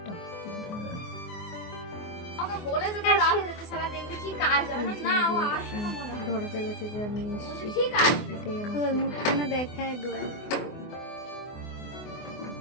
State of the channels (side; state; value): right; late; 24 ms